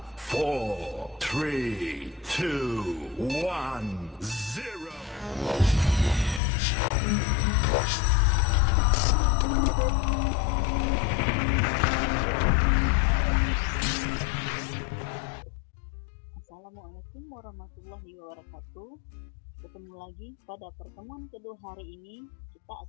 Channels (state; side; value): drops out; right; at 6.4 s